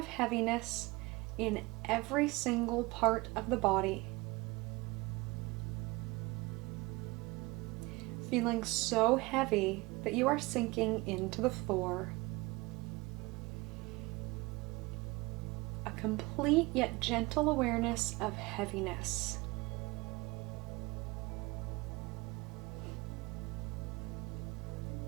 heaviness in every single part of the body. Feeling so heavy that you are sinking into the floor. A complete yet gentle awareness of heaviness.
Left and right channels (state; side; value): quieter; left; 23.3 dB